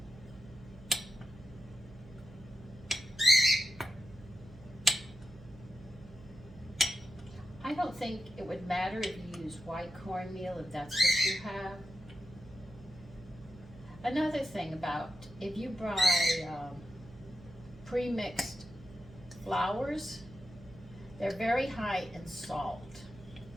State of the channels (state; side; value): noise; right; hum, 19 dB below the sound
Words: I don't think it would matter if you use white cornmeal, if that's what you have. Another thing about, if you buy pre-mixed flours, they're very high in salt,